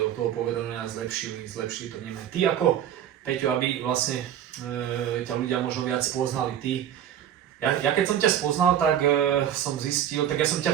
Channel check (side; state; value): left; quieter; 10.4 dB